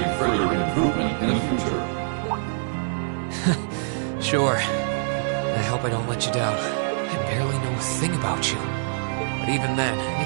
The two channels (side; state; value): left; silent; digital silence